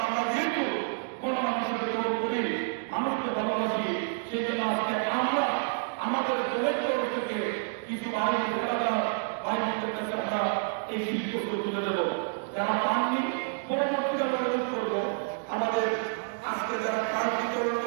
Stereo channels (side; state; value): left; silent; digital silence